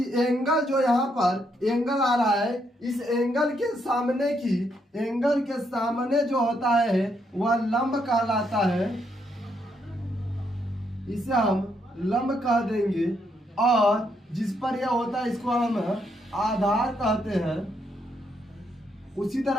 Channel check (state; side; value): normal; both; correlation 0.76